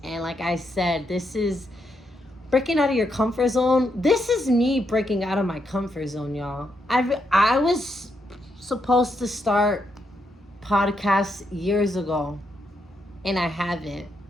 And like I said, this is breaking out of your comfort zone. This is me breaking out of my comfort zone, y'all. I was supposed to start podcasts years ago, and I haven't.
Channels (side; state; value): both; normal; correlation 0.80